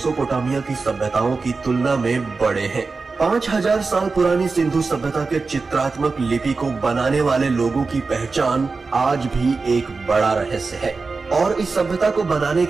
की सभ्यताओं की तुलना में बड़े हैं। 5000 साल पुरानी सिंधु सभ्यता के चित्रात्मक लिपि को बनाने वाले लोगों की पहचान आज भी एक बड़ा रहस्य है और इस सभ्यता को बनाने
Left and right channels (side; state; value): left; quieter; 4.2 dB